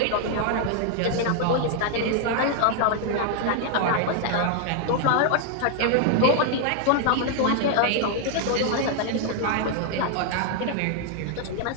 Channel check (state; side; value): different; both; correlation 0.00